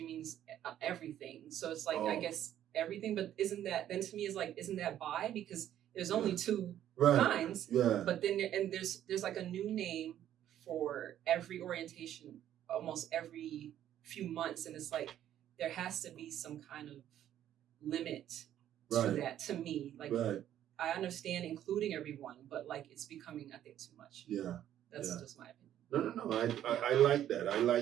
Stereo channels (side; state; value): left; quieter; 11.3 dB